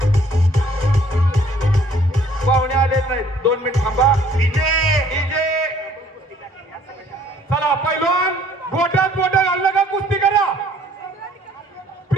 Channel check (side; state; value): both; normal; correlation 0.59